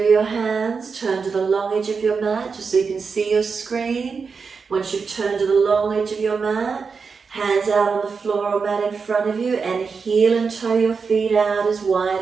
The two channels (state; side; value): quieter; left; 5.2 dB